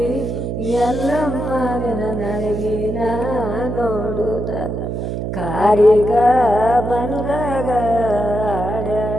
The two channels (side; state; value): right; noise; hum, 4 dB below the sound